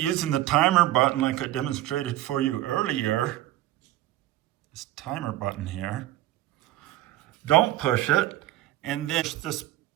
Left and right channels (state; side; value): quieter; left; 14.8 dB